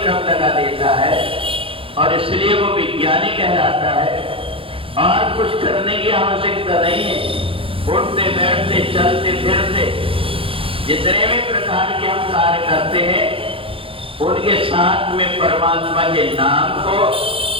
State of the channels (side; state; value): left; late; 0.26 ms